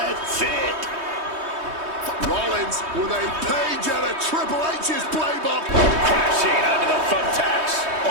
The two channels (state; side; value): late; left; 3.2 ms